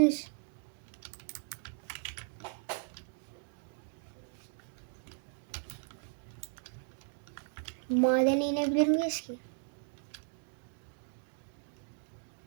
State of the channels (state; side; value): silent; left; digital silence